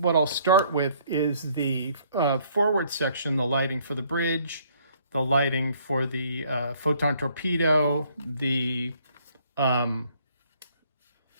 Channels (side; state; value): both; inverted; correlation -0.63